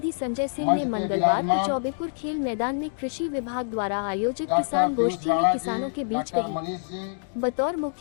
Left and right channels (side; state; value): right; silent; digital silence